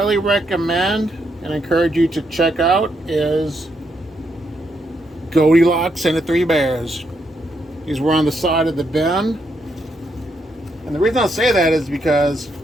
recommend and encourage you to check out is Goldilocks and the Three Bears. These were on the side of the bin. And the reason I say that is because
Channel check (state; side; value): normal; both; correlation 0.78